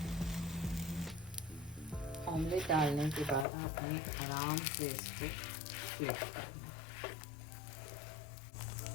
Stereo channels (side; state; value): right; drops out; at 3.5 s